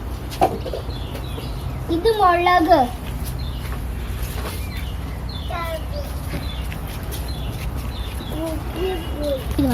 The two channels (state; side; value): identical; both; correlation 1.00